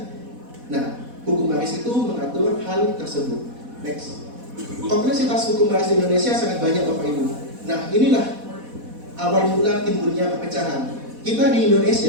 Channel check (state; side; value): late; left; 4.1 ms